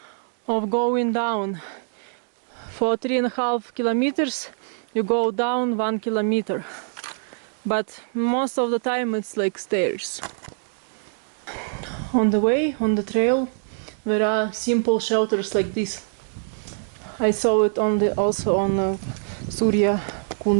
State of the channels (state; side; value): silent; left; 62 dB below the other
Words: of going down. For 3.5 kilometers you go down 1 kilometer, but most of the time it's like stairs. On the way, on the trail, there are simple shelters like this. I saw it also on